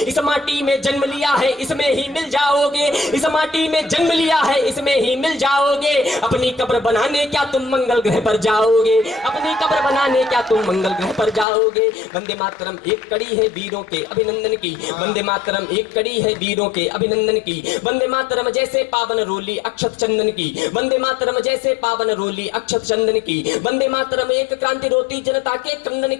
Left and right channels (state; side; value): drops out; right; at 11.5 s